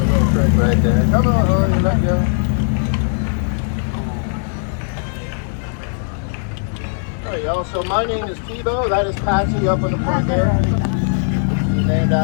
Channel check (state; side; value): silent; right; 63 dB below the other